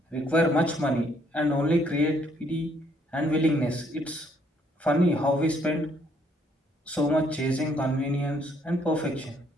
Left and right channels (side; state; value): both; normal; correlation 0.68